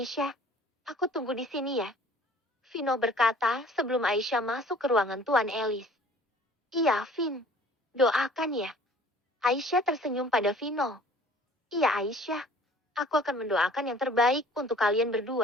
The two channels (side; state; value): both; normal; correlation 0.51